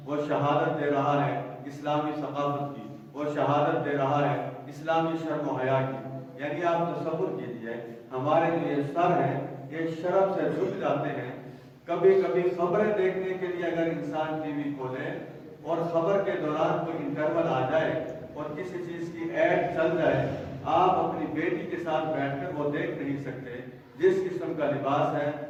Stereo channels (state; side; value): identical; both; correlation 1.00